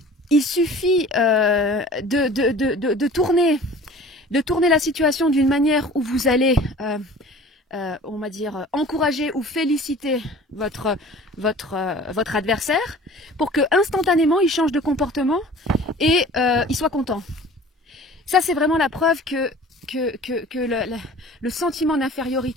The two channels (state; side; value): normal; both; correlation 0.44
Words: suffit de tourner la situation d'une manière où vous allez, on va dire, encourager ou féliciter votre adversaire pour que instantanément il change de comportement et il soit content. Ça, c'est vraiment la preuve que le sentiment